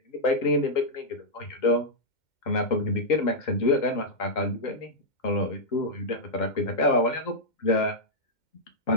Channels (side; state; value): right; late; 2.1 ms